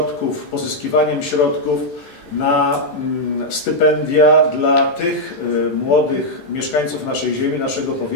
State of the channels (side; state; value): right; late; 13 ms